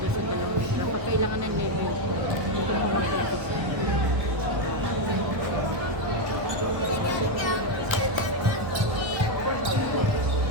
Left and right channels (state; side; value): late; left; 1.2 ms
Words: sa dalawang nila pag kailangan ng level dito mo mag-request